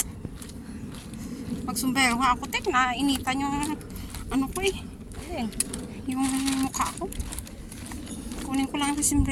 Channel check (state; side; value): identical; both; correlation 1.00